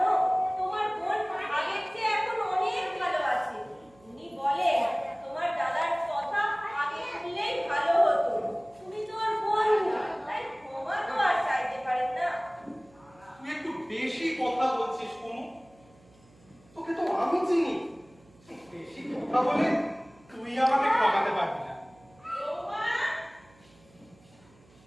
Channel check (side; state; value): right; noise; hum, 28 dB below the sound